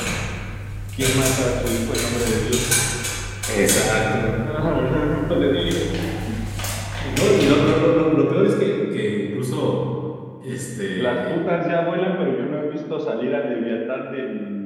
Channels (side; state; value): both; identical; correlation 1.00